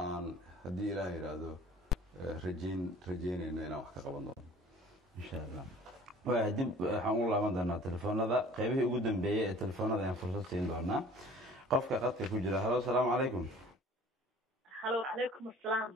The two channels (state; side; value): normal; both; correlation 0.48